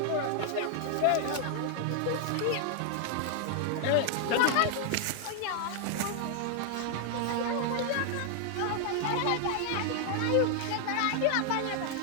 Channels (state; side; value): different; both; correlation 0.00